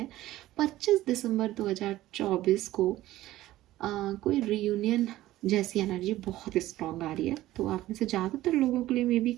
25 दिसंबर 2024 को कोई रियूनियन जैसी एनर्जी बहुत स्ट्रांग आ रही है। तो आप में से ज़्यादातर लोगों के लिए मे बी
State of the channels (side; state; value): left; quieter; 15.6 dB